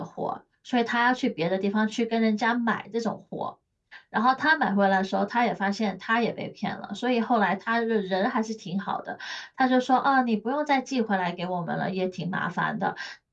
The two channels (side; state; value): both; identical; correlation 1.00